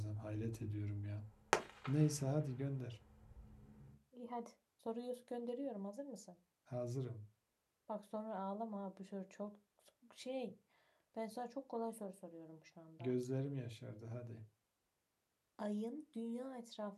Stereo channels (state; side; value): identical; both; correlation 1.00